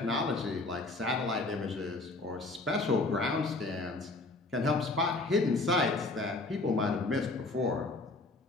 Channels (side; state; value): right; quieter; 3.1 dB